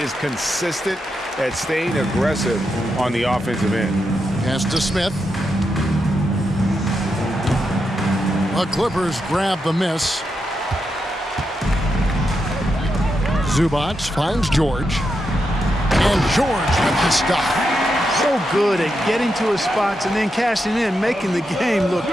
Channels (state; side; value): normal; both; correlation 0.85